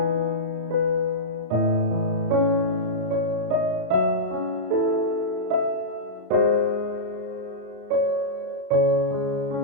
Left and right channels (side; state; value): left; late; 34 ms